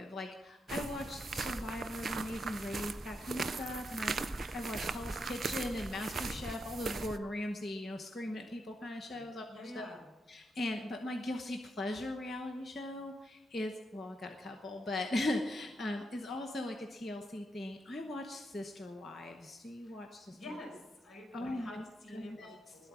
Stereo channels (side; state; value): both; normal; correlation 0.82